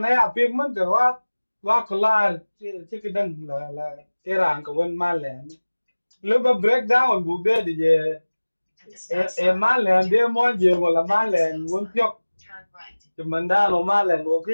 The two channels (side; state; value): both; inverted; correlation -1.00